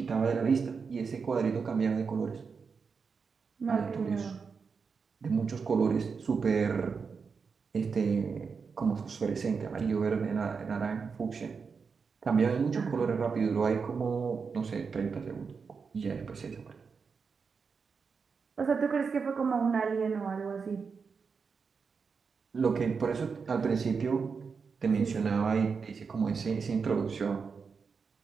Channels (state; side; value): quieter; left; 5.4 dB